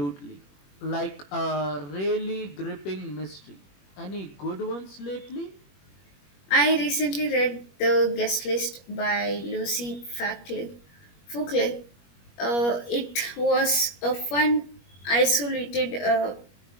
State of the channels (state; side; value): late; right; 21 ms